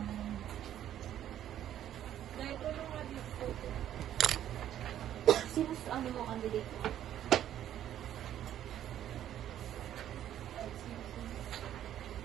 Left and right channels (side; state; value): left; quieter; 11.3 dB